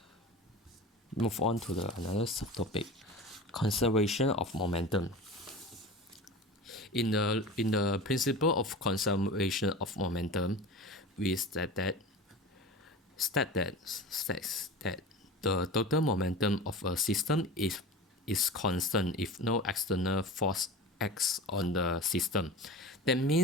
on to another subtopic: conservation of momentum. In the principle of conservation of momentum, we states that the total momentum of a system is constant if no external force acts on the system. That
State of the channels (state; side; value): normal; both; correlation 0.33